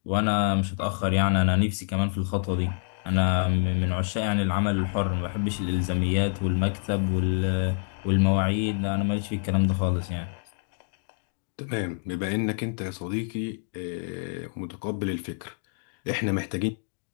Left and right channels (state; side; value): silent; right; digital silence